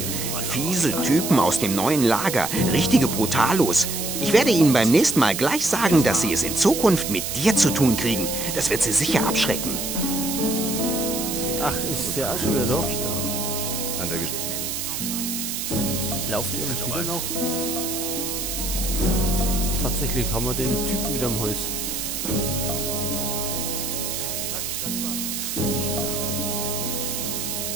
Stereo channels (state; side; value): noise; right; hiss, 3 dB below the sound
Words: Fiese Typen aus dem neuen Lager, richtige Brutalos. Ich werde ihnen beim nächsten Mal gleich sagen, dass sie es in Zukunft mit dir zu tun kriegen. Das wird sie sicher abschrecken. Ach, ist der auch schon wieder da? An der Lauft ihr uns wieder noch? Tatsächlich haben wir den Typen wieder am Hals.